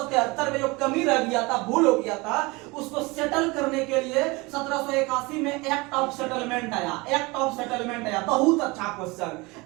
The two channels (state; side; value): quieter; left; 24.6 dB